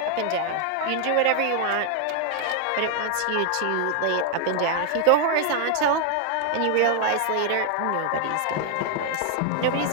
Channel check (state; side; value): different; both; correlation 0.00